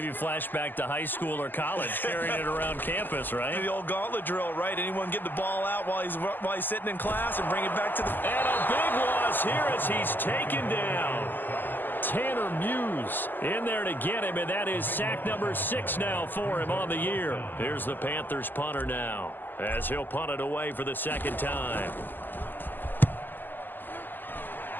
flashback to high school or college, carrying it around campus, right? The old gauntlet drill, right? Anyone get the ball out while he's sitting in class and bring it back to the... And a big loss here as he's taken down. Tanner Muse in there to get him, and that is sack number 6 now for him on the year. Here's the Panthers punter now as he'll punt it away for the 2nd time.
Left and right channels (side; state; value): right; late; 0.089 ms